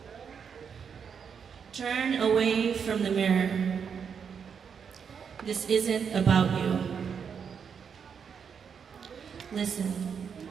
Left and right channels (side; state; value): left; quieter; 6.8 dB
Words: Turn away from the mirror. This isn't about you. Listen.